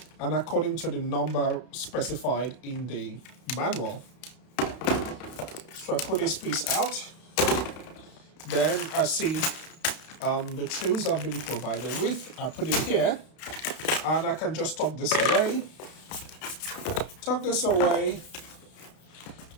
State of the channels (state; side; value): late; right; 32 ms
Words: and according to the number specified in the manual. So I put this piece out. Then I see the tools I've been provided with. I put it here and I can just tuck this away.